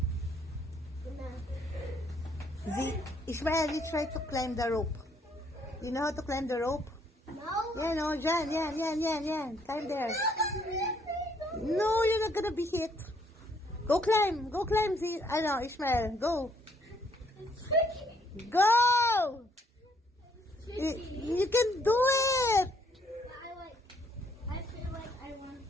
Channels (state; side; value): normal; both; correlation 0.68